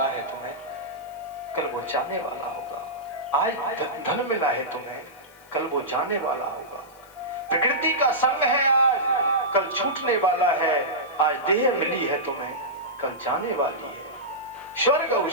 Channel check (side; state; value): left; noise; hiss, 27 dB below the sound